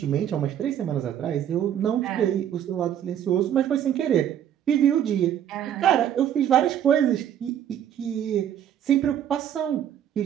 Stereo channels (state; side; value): quieter; left; 10.1 dB